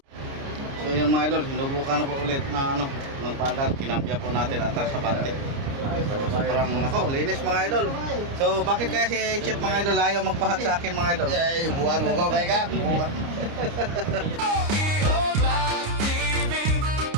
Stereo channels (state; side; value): late; left; 29 ms